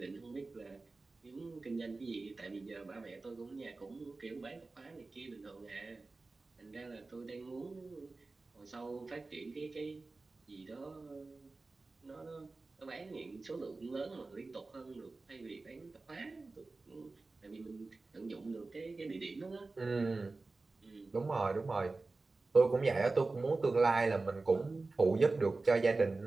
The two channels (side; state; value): left; quieter; 3.5 dB